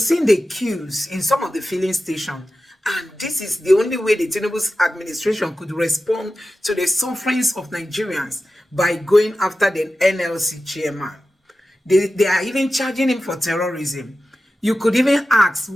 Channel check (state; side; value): normal; both; correlation 0.93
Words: seen the queues in some of the filling stations, and this is the only way the Tinubu's administration could respond to the sufferings of Nigerians by going after the NLC chairman. They are even charging him for terrorism. You could even ask,